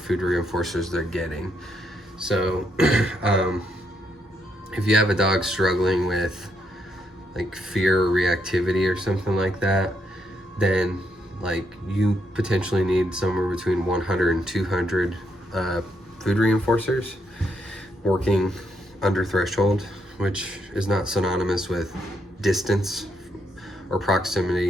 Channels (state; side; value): normal; both; correlation 0.77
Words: reinforcers they're getting. So if you have a dog struggling with like fear or reactivity or something like that, then like you potentially need somewhere between 100 and 200 food reinforcers working under threshold, which is not synonymous with distance or